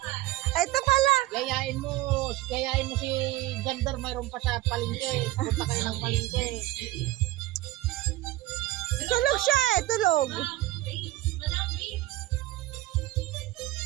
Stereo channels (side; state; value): left; quieter; 16.9 dB